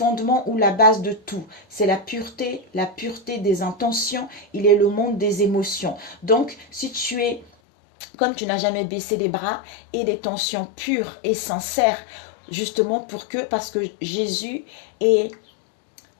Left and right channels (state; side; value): drops out; right; at 7.5 s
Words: ou la base de tout, c'est la pureté des intentions. Il est le monde des émotions. Donc, si tu es, comme tu n'as jamais baissé les bras, et des tensions pures et sincères, justement parce que Jésus est,